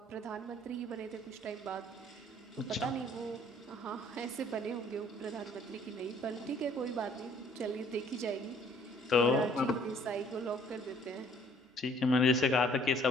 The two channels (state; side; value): normal; both; correlation 0.59